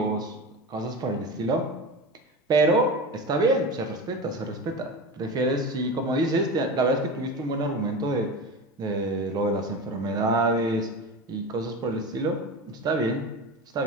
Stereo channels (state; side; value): normal; both; correlation 0.26